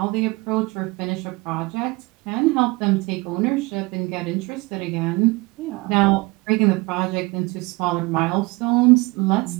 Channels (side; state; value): left; quieter; 24.1 dB